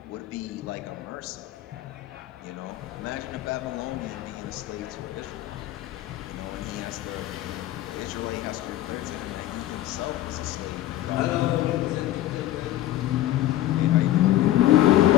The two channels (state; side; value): quieter; right; 14.2 dB